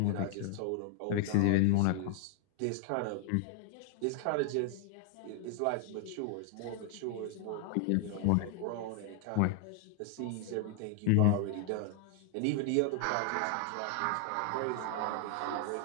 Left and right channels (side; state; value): both; different; correlation 0.00